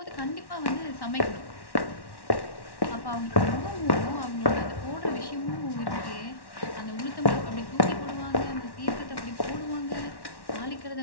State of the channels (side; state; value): right; late; 1.1 ms